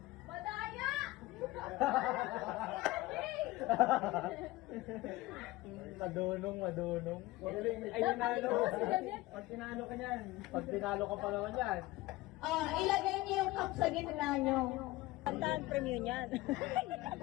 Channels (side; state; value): right; quieter; 18.9 dB